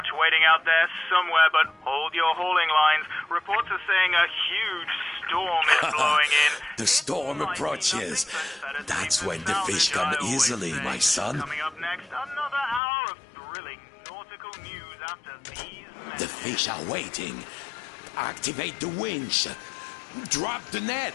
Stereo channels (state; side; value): drops out; right; at 12.8 s